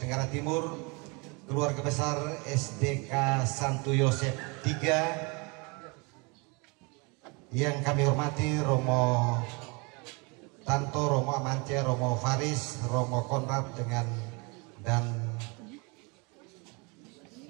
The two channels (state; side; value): quieter; left; 29.8 dB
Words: Timur, keluarga besar SDK Santo Yosef III, yang kami hormati Romo Tanto, Romo Amance, Romo Faris, Romo Konrad dan